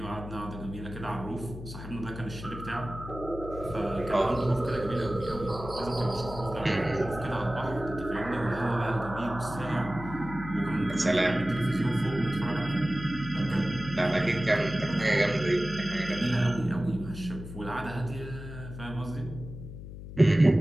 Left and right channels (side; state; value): left; noise; hum, 11 dB below the sound